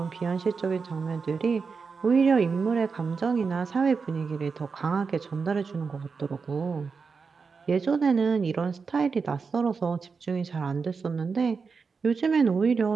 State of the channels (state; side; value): quieter; left; 5.1 dB